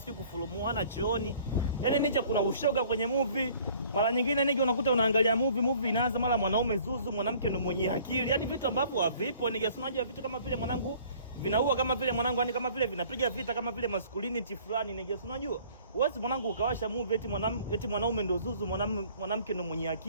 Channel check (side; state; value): both; inverted; correlation -0.54